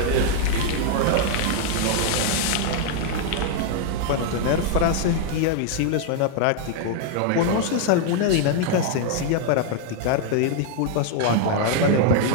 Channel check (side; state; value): both; different; correlation 0.00